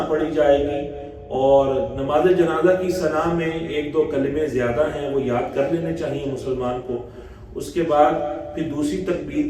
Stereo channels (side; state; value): both; identical; correlation 1.00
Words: पढ़ी जाएगी और नमाज जनाजा की सना में 1-2 कलमे ज़्यादा हैं, वो याद कर लेने चाहिए मुसलमान को। उसके बाद फिर दूसरी